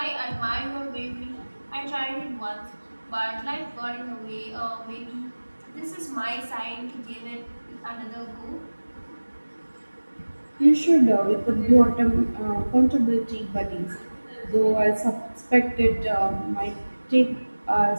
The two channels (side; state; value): both; inverted; correlation -1.00